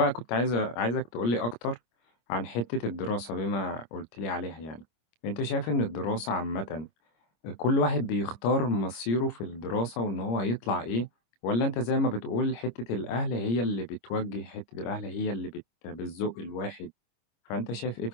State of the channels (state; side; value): late; right; 25 ms